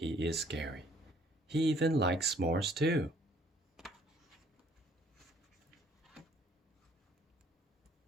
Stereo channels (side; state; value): both; normal; correlation 0.61